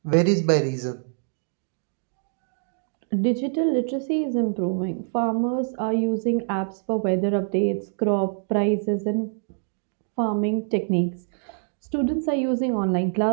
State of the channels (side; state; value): left; silent; digital silence